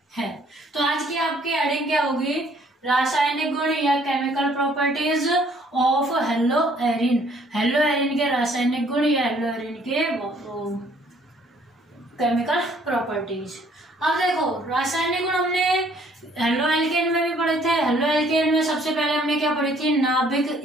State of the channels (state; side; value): normal; both; correlation 0.61